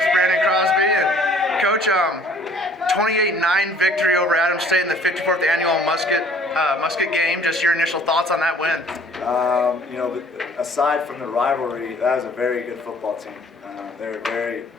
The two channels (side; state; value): both; normal; correlation 0.55